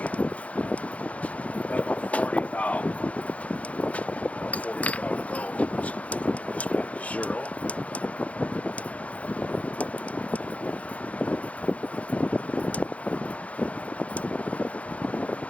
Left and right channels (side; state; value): right; late; 0.065 ms